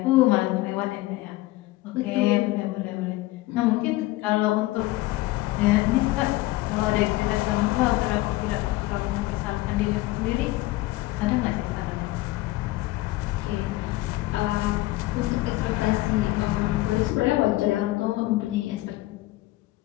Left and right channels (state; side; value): quieter; right; 18.3 dB